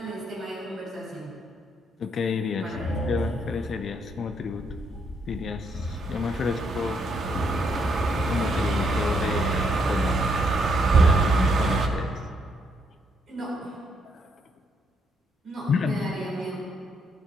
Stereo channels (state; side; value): normal; both; correlation 0.74